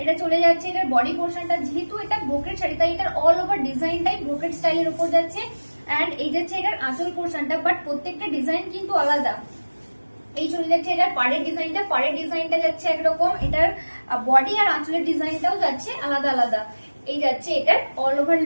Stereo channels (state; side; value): inverted; both; correlation -1.00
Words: এটা চলে যাচ্ছে এটার বডি পোর্শনটা, যেহেতু এটা ব্রোকেড শাড়ি তাই এটার অল ওভার ডিজাইনটাই ব্রোকেড স্টাইলের উপর যাচ্ছে। এন্ড এই যাচ্ছে এটার আঁচল পোর্শনটা, বাট প্রত্যেকটা ডিজাইন কিন্তু আলাদা। এই চলে যাচ্ছে এটার পাড়ের ডিজাইনটা, পাড়ের ডিজাইনটা যাচ্ছে একরকম, এটার বডি আর আঁচলের ডিজাইনটাও যাচ্ছে আলাদা আলাদা। এই যাচ্ছে এটার অল ওভার